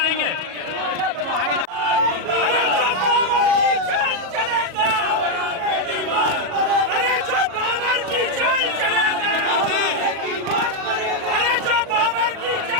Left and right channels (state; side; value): late; left; 37 ms